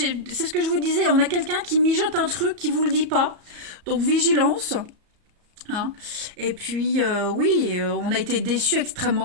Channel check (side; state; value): left; late; 34 ms